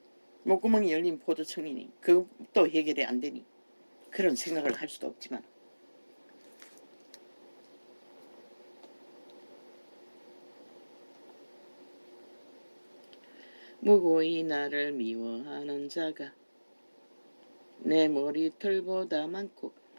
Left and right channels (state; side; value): inverted; both; correlation -1.00